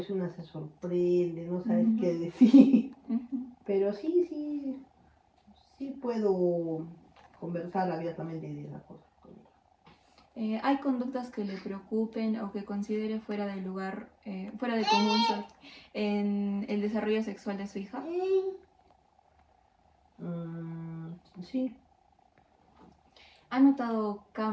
una se sorprende, no sabes qué decir, pero sí puedo conversar abiertamente de esas cosas con ella. ¿Hay conductas que le preocupen o que considere fuera de lugar, fuera de común en el desarrollo sexual de su hija? Sí. ¿Ha notado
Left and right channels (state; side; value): identical; both; correlation 1.00